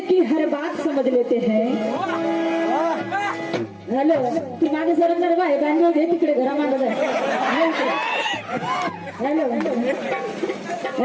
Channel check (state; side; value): identical; both; correlation 1.00